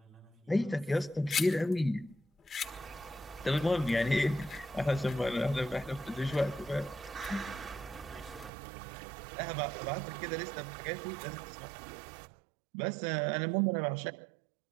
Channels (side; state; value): left; drops out; at 8.5 s